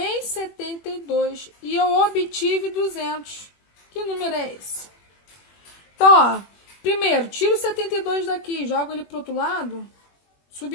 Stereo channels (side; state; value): right; late; 21 ms